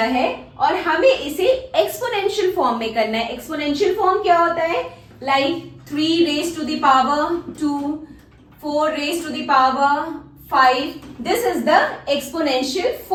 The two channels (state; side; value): identical; both; correlation 1.00